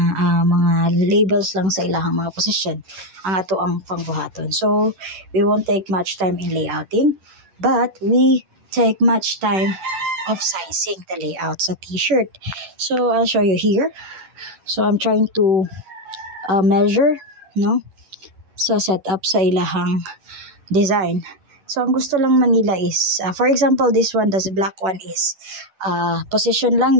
labels lang sa ilahang mga position. Ang ato ang pangbuhaton. So, we won't take much time in layouting, but we take much time of sizing the layout sa t-shirt. So I'll show you here. So I'm trying to measure, no? So set up sa ilahang design. So ang gusto lang manila is, for example, this one, this black one is position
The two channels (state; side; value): late; left; 11 ms